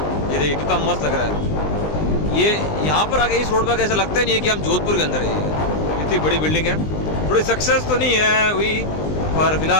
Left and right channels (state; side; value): late; right; 20 ms